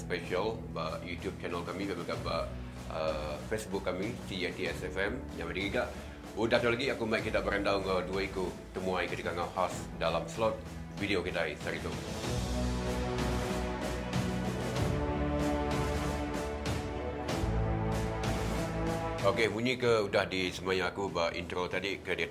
ba YouTube channel kami dan juga Facebook kami CATSFM yang ada juga. Udah tu lagi aku mai kita berandau dengan dua iku temuai ketika ngau khas dalam slot video kita hari itu. Okey, bunyi ke udah di semaya aku ba intro tadi ke dia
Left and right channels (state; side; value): identical; both; correlation 1.00